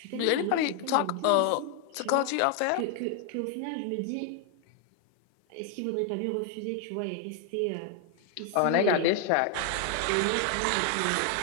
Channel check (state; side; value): different; both; correlation 0.00